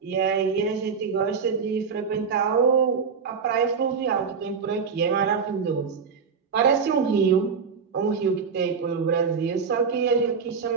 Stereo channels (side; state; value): left; quieter; 5.8 dB